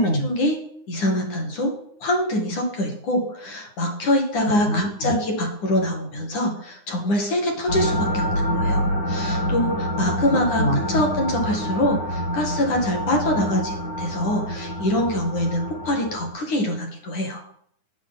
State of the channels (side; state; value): right; late; 9.7 ms